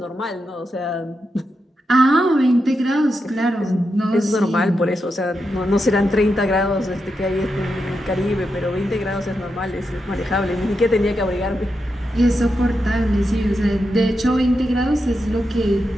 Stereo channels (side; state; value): both; normal; correlation 0.86